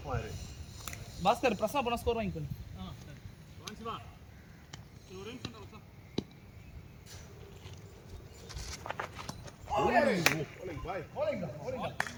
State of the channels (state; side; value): identical; both; correlation 1.00